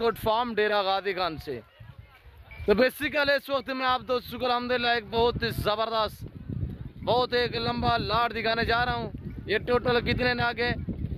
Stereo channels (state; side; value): identical; both; correlation 1.00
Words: फार्म डेरा गादी खान से। तो बेसिकली इस वक्त मैं आप दोस्तों को अल्हम्दुलिल्लाह एक बहुत ही ज़बरदस्त, बहुत एक लंबा लाट दिखाने जा रहा हूँ। ये टोटल कितने नागे